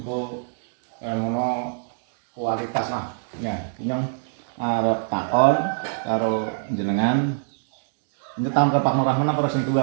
ngono kualitas lah ya nyong arep takon karo jenengan nyetam ke Pak Nurrahman apa sing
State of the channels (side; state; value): left; silent; digital silence